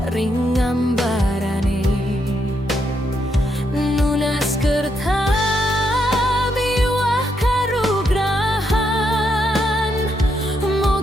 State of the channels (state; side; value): normal; both; correlation 0.79